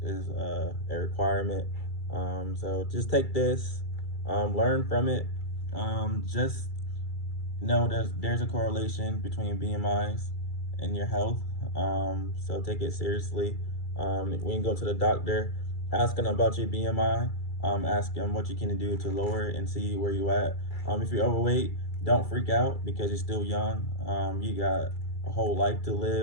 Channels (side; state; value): right; late; 2.3 ms